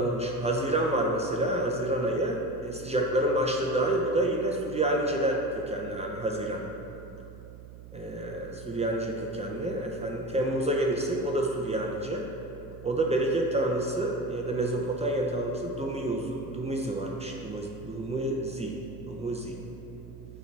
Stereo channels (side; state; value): right; noise; hum, 16 dB below the sound